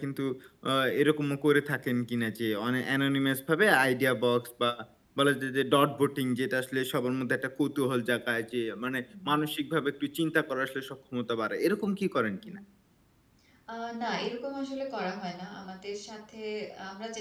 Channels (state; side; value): identical; both; correlation 1.00